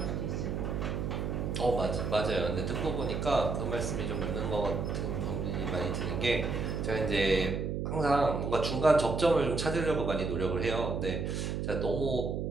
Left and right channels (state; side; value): noise; right; hum, 2 dB below the sound